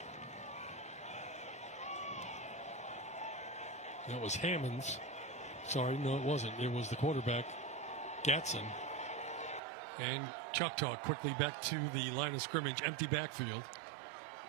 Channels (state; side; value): drops out; left; at 9.6 s